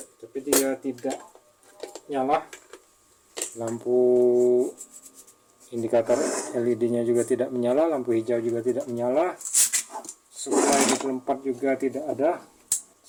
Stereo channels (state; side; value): identical; both; correlation 1.00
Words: Tapi dia tidak nyala. Lampu indikator LED-nya juga tidak menyala, lampu hijau juga tidak menyala. Supply 24 juga tidak ada.